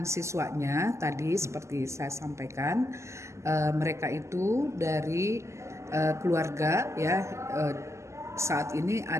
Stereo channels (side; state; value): left; late; 0.14 ms